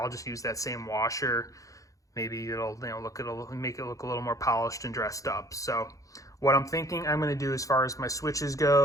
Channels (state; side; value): late; right; 0.16 ms